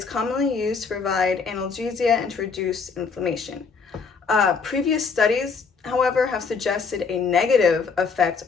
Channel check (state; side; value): quieter; right; 5.2 dB